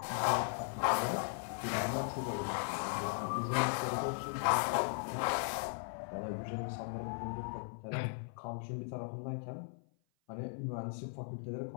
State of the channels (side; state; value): right; silent; 53 dB below the other